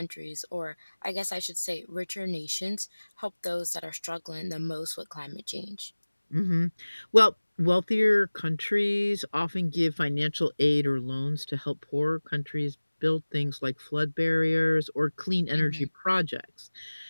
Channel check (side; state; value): both; inverted; correlation -1.00